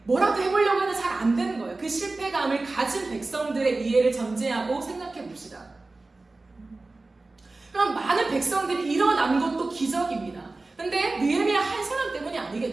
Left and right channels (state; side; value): quieter; left; 3.3 dB